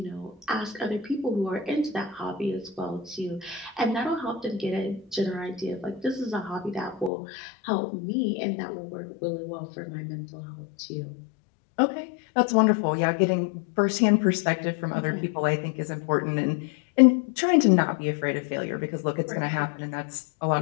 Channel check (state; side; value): drops out; right; at 7.1 s